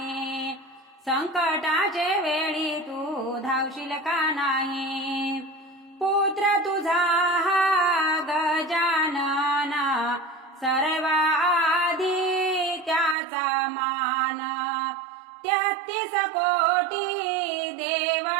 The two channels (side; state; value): left; drops out; at 13.2 s